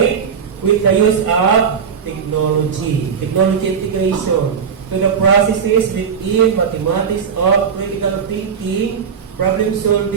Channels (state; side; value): quieter; left; 6.7 dB